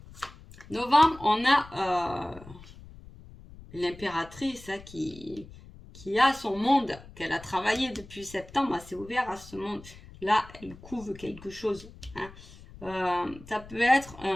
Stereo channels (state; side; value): noise; left; rumble, 19 dB below the sound